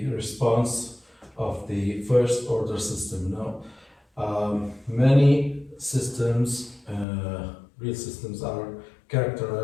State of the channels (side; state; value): right; drops out; at 7.1 s